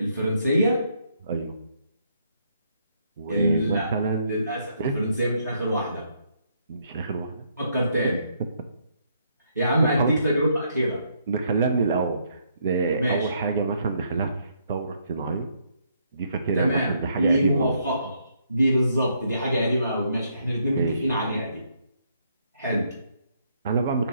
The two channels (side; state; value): both; inverted; correlation -0.72